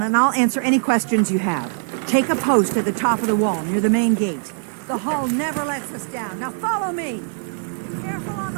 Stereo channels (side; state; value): left; silent; digital silence